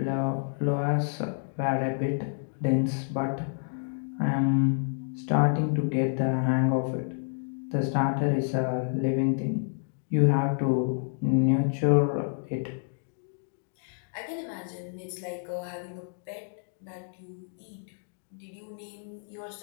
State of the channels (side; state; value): right; silent; digital silence